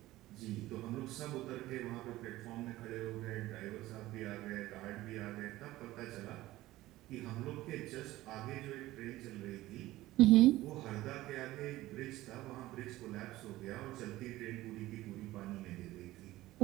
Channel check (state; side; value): quieter; left; 16.8 dB